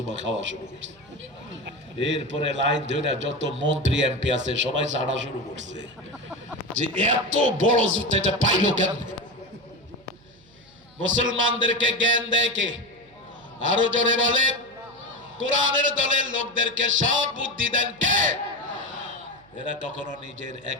খাওয়া শুরু করছে। এরপরে লাইন ধরে যত মন্ত্রী এমপি আছে সবাই ছাড়া শুরু করছে যে এত বড় জুতা এটা পাইলো কেন? মুসলমানদেরকে জ্ঞান দেয় কে? আরো জোরে বলে। কোরআনের দলের লোকদেরকে সব বুদ্ধি দেন কে? এরা কখনো নিজের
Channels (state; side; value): noise; right; hum, 29 dB below the sound